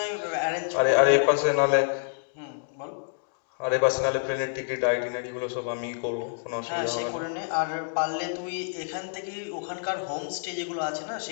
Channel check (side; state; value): right; silent; digital silence